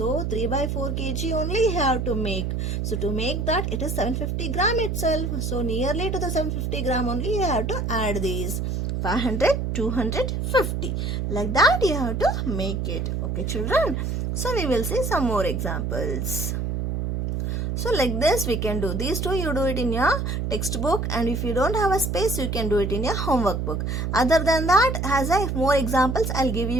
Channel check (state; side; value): noise; right; hum, 1 dB below the sound